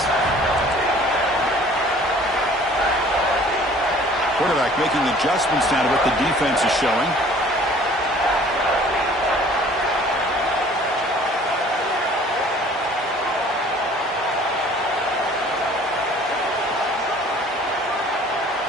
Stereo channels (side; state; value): both; normal; correlation 0.52